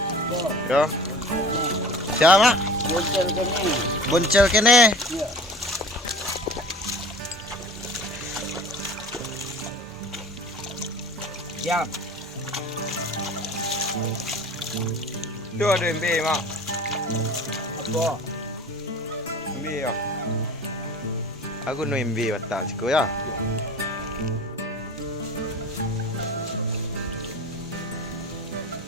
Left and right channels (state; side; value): normal; both; correlation 0.41